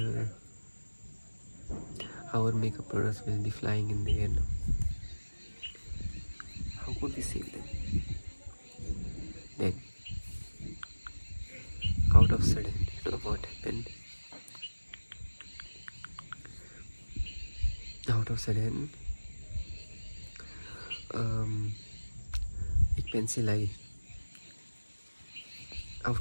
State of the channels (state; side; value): inverted; both; correlation -1.00